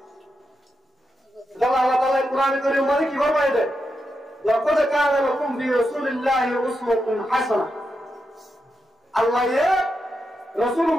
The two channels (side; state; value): both; normal; correlation 0.86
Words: আল্লাহ তাআলা কোরআনে কারীম মানে কি ফরমায় দেয় লাকাদ কানা লাকুম ফি রাসূলিল্লাহি উসওয়াতুন হাসানাহ আল্লাহ